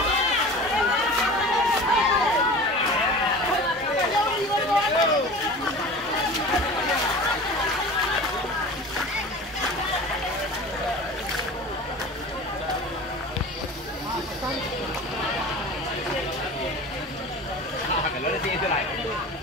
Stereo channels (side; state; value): both; normal; correlation 0.37